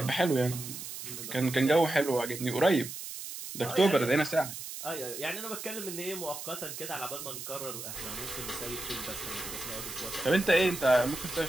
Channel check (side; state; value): right; noise; hiss, 9 dB below the sound